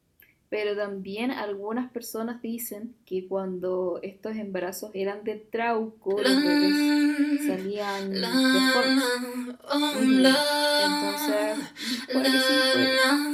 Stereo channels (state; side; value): identical; both; correlation 1.00